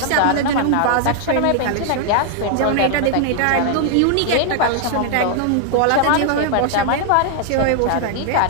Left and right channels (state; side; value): different; both; correlation 0.00